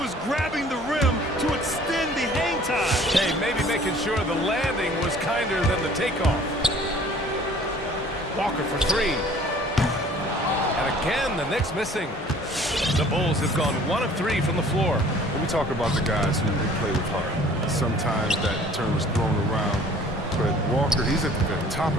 grabbing the rim to extend the hang time. Hey, maybe making sure the landing was kinder than the takeoff. Walker for 3. And again, the Knicks missing. The Bulls have gone 1 of 3 from the floor. When we talk about the guys who play with heart, sometimes that term is thrown around, but Walker, he's at the very top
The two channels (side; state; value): both; normal; correlation 0.52